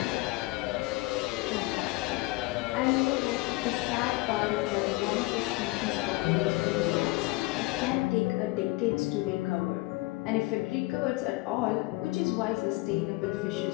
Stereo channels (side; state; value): right; quieter; 21.8 dB